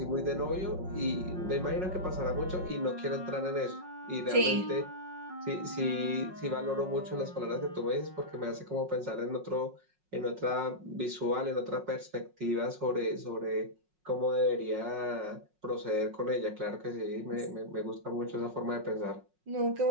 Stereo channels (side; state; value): left; late; 5.5 ms